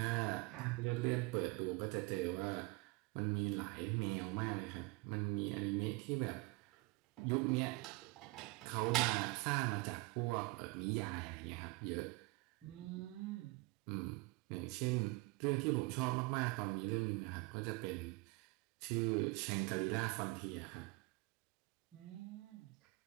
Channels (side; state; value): left; quieter; 24.6 dB